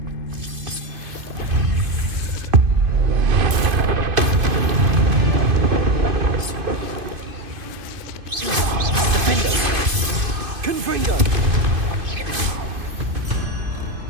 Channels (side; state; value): left; late; 2.5 ms